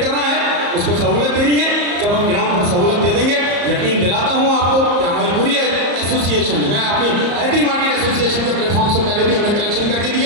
करना है, उसको सहूलत देनी है। जब हम ग्राउंड पर सहूलत दे देंगे, यकीन दिलाता हूँ आपको कि हमारी पूरी एसोसिएशन, मैं अपनी हैदरी मार्केट एसोसिएशन के प्लेटफॉर्म से पहले भी हमने कलेक्शन करके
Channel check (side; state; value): left; late; 34 ms